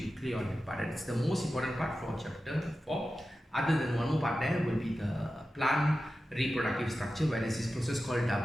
clear on that part. It's the most important part for chapter 4. Other than one more part, there will be the plant reproductive structure, where there is this process called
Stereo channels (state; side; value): normal; both; correlation 0.93